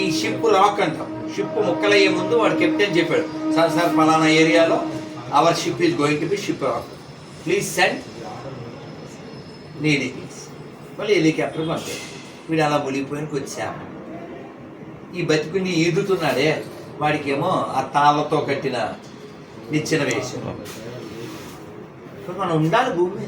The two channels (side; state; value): both; identical; correlation 1.00